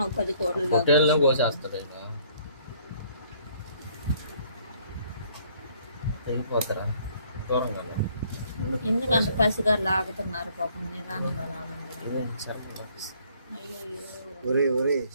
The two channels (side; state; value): both; inverted; correlation -0.62